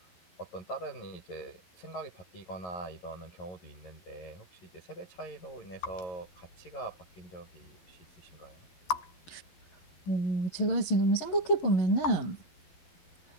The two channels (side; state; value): right; late; 11 ms